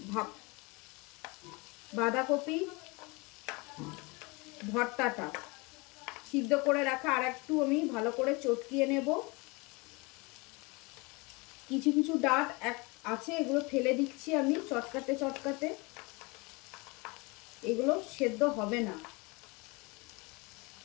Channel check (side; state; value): right; quieter; 26.9 dB